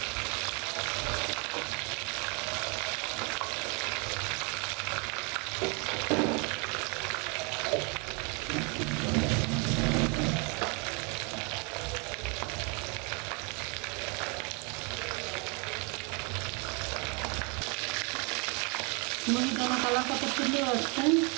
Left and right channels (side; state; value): left; quieter; 33.2 dB